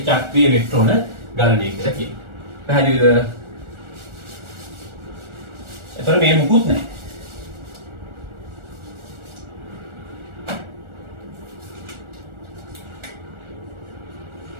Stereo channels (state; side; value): late; left; 1.4 ms